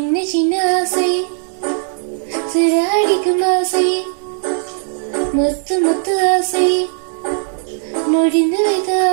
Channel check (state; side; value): silent; left; digital silence